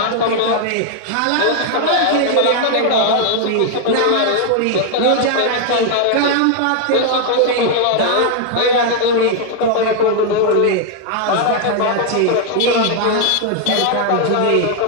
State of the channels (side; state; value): both; different; correlation 0.00